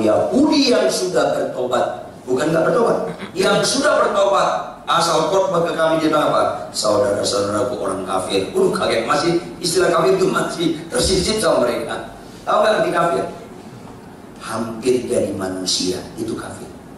Yahudi yang sudah bertobat, bukan nggak bertobat, yang sudah bertobat. Asal khotbah ke kami dia bilang apa? Saudara-saudaraku orang kafir. Kaget, masih istilah kafir itu masih tersisip sama mereka. Tahu nggak arti kafir? Hampir jadi manusia, itu kafir.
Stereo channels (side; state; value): both; identical; correlation 1.00